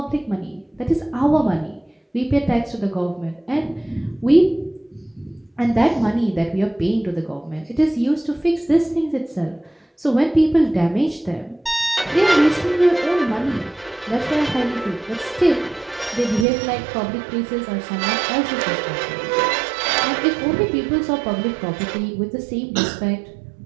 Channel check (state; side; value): drops out; left; at 16.4 s